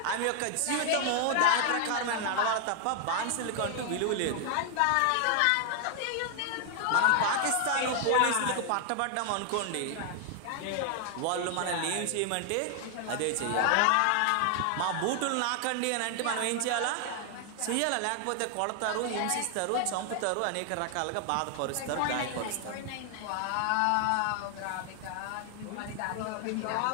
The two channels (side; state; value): both; different; correlation 0.00